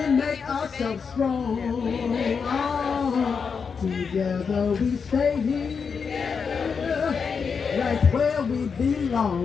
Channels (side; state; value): right; quieter; 5.9 dB